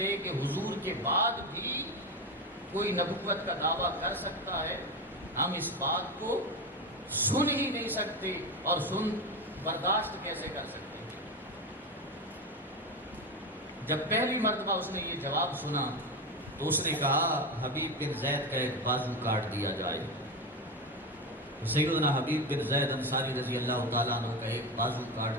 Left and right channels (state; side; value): normal; both; correlation 0.17